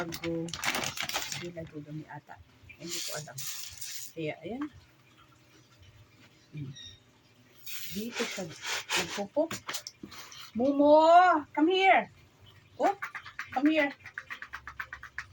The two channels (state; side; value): identical; both; correlation 1.00